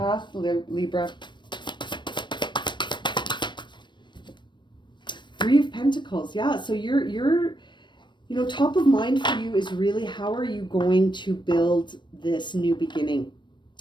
Libra. Three of Pentacles. Yeah, so you're top of mind for you is really how are you going to build this new beginning?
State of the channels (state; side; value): late; right; 0.22 ms